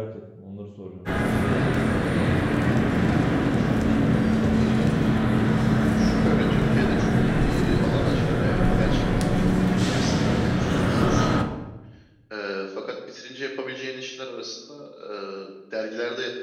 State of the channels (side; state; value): both; identical; correlation 1.00